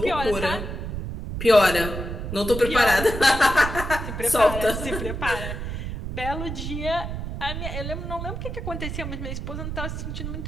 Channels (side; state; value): right; noise; rumble, 5 dB below the sound